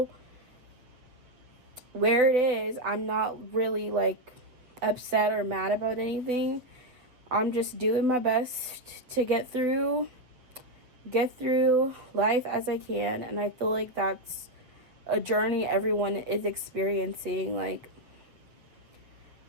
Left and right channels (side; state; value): left; late; 7.8 ms